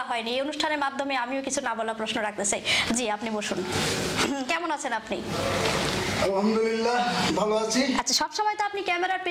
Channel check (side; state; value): both; identical; correlation 1.00